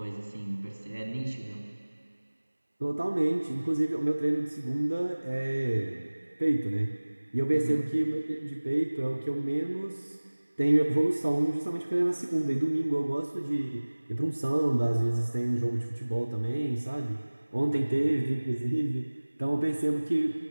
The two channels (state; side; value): inverted; both; correlation -1.00